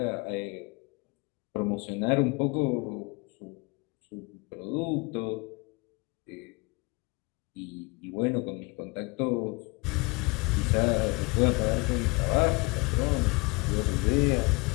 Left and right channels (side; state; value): right; quieter; 27.6 dB